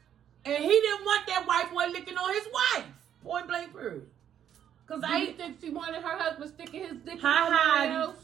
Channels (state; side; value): quieter; left; 9.7 dB